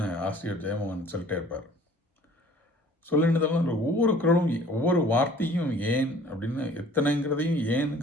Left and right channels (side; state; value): both; normal; correlation 0.52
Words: ஆசிரியர் ஜெயமோகன் சொல்லிட்டே இருப்பார். சொல்லெண்ணுதெல்லாம் ஒவ்வொரு குறளும் ஒவ்வொரு வார்த்தையும் ஏன் அப்படின்னு எத்தனைங்கிறதையும்